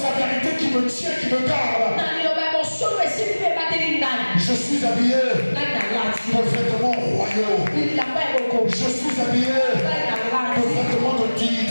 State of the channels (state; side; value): inverted; both; correlation -1.00